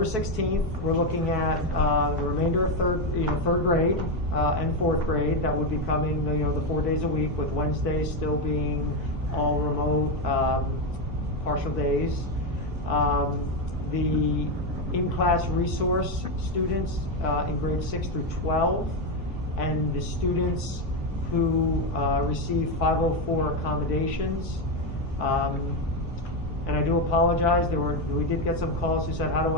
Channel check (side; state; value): both; normal; correlation 0.08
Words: 16th, we're looking at the remainder of third grade and fourth grade. That would be coming, the 4 days a week, with Wednesdays still being all remote, partial days. The in-class resource students in grades 6 through 12, and the students who receive 504 accommodations. And I do apologize, we did get some calls who said, how do